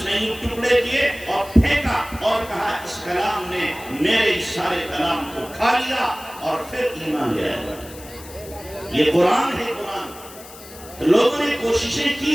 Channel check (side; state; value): left; noise; hiss, 18 dB below the sound